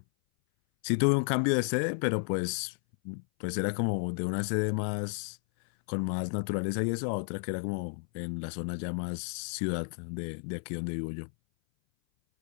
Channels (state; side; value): silent; right; 56 dB below the other